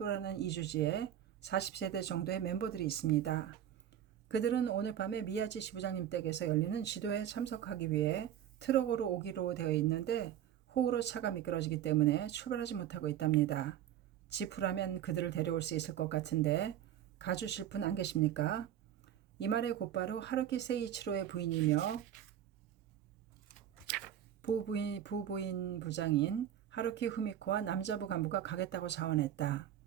40세대 정도의 멤버들이 있습니다. 그들은 오늘 밤에 미야지 지부장님 댁에서 열리는 지도회에 참석하기 위해 트럭으로 오기로 되어 있는데 호우로 차가 미끄러지기 때문에 출발하지 못하고 있답니다. 지프라면 그들을 데려올 수 있을 것 같은데 가주실 분 안 계십니까? 이 말에 곧바로 하루키 세이치로의 부인이며 부부인 부장인 하루키 후미코와 남자부 간부가 가겠다고 자원했다.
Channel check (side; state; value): left; quieter; 10.7 dB